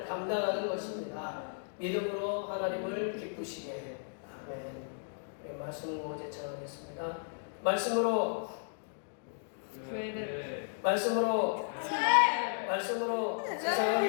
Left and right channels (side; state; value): right; silent; digital silence